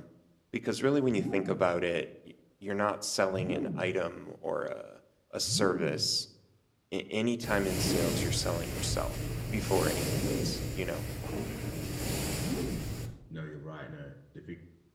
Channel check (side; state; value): both; identical; correlation 1.00